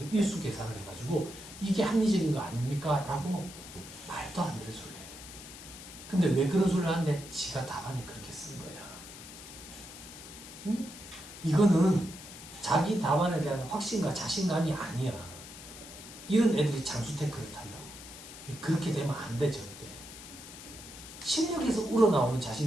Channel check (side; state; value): left; noise; hiss, 14 dB below the sound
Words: 일수 계산을 해가지고 이게 합리적인 거 아닙니까? 라고 말도 안 되는 소리를 해. 근데 왜 그런 소리를 하는데? 지가 답안에 그렇게 쓴 거야. 응? 이거는 자기 답안에 대한 확신과 자신감이 아니야. 이런 애들이 장수 태클을 탄다고. 그렇게 되면 안 돼 절대. 실력에서 우러나오는